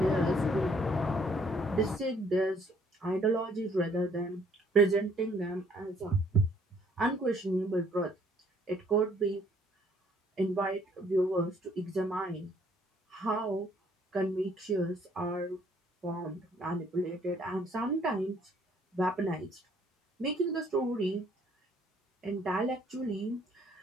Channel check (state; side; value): normal; both; correlation 0.63